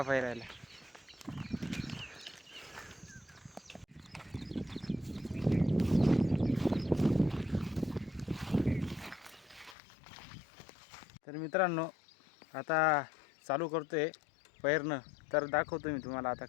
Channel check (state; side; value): drops out; right; at 9.8 s